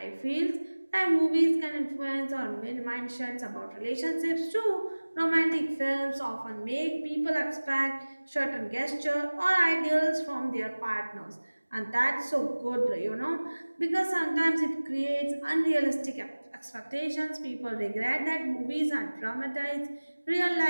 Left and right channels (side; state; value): both; inverted; correlation -1.00